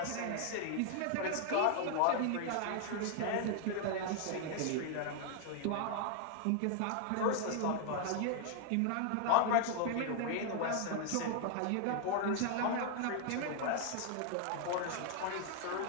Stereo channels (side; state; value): both; different; correlation 0.00